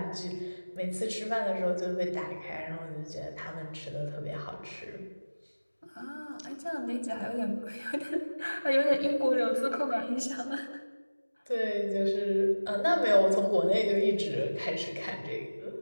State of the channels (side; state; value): both; inverted; correlation -1.00